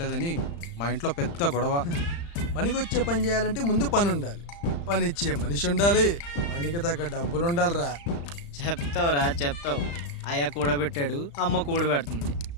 మా ఇంట్లో పెద్ద గొడవ. పనికొచ్చే పని చేయాలంటే ముందు పని ఉండాలి, పని ఇచ్చే మనిషి ఉండాలి, పనికి తగ్గ డబ్బులు ఉండాలిరా. చెప్తావురా చెప్తావు. అయ్య కూడబెట్టాడు, అమ్మ కూడబెడుతుంది.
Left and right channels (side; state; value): right; late; 35 ms